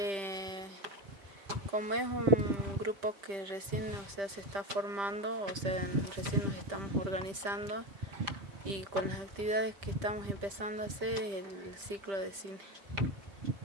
Como es un grupo que recién se está formando, recién nos estamos organizando y con las actividades que estamos empezando a hacer es el ciclo de cine.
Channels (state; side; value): late; left; 5.1 ms